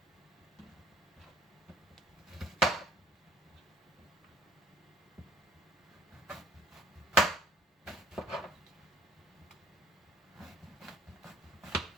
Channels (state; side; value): normal; both; correlation 0.54